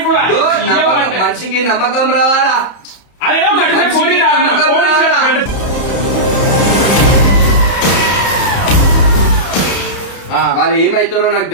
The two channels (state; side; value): late; right; 31 ms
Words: మనిషికి నమ్మకం రావాలా? వాళ్ళు ఏమైతారో నాకు